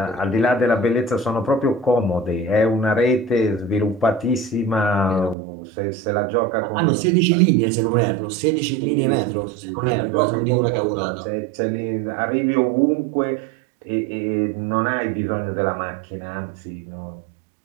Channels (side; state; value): left; drops out; at 5.4 s